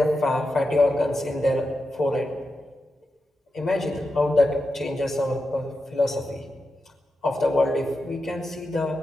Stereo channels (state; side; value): normal; both; correlation 0.89